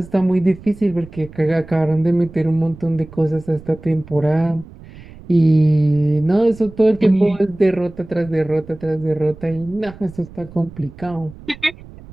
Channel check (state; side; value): noise; right; rumble, 19 dB below the sound